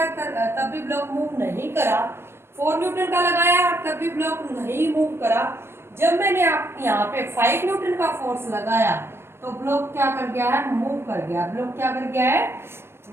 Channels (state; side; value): late; left; 0.12 ms